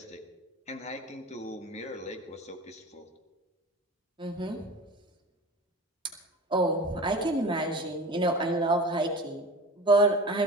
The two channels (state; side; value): normal; both; correlation 0.34